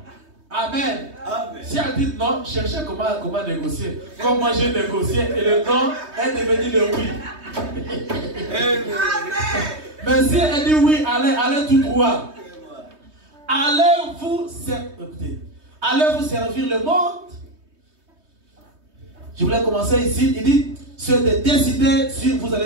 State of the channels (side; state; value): left; late; 3.2 ms